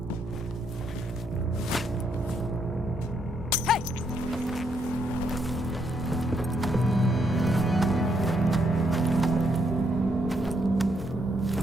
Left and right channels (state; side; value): normal; both; correlation 0.75